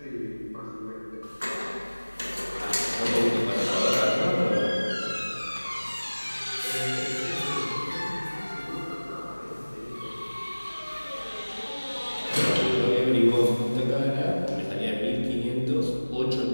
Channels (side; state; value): both; inverted; correlation -1.00